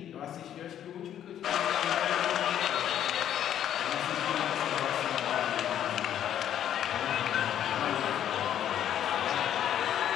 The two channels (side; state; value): right; quieter; 10.5 dB